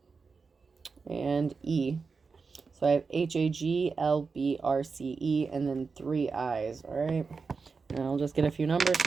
And E. So I have HAGLBRCE and then 3 eyes. All right. And I'll just get a few numbers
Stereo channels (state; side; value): quieter; left; 4.8 dB